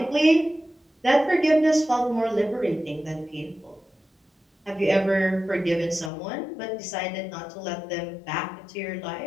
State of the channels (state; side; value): drops out; right; at 6.1 s